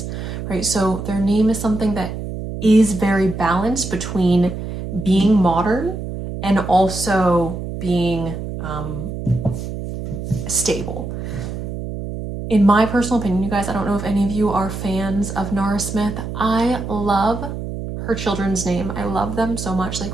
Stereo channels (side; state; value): right; noise; hum, 6 dB below the sound